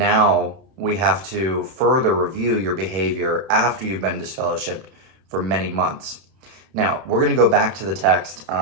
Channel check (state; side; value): late; left; 31 ms